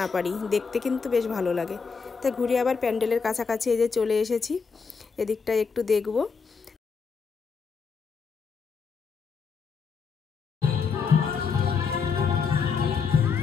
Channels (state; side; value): quieter; right; 5.4 dB